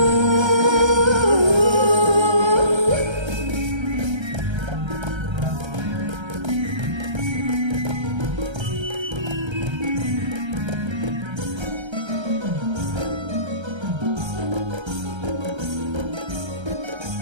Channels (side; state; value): left; late; 1.3 ms